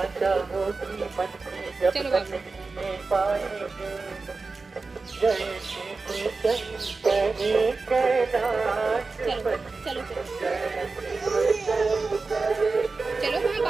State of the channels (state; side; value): quieter; left; 4.0 dB